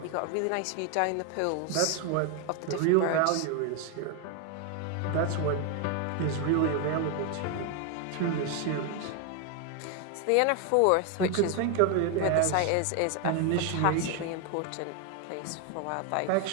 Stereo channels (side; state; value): both; different; correlation 0.01